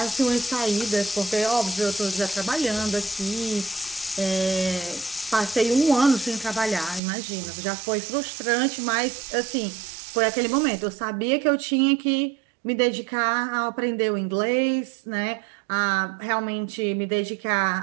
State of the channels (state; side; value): drops out; left; at 7.0 s